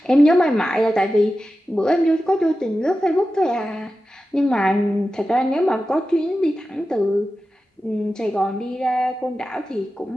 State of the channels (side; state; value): both; normal; correlation 0.93